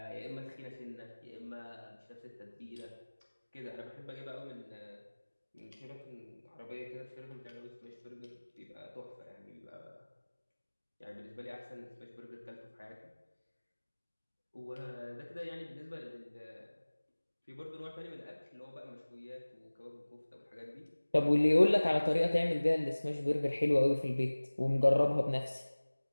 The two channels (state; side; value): inverted; both; correlation -1.00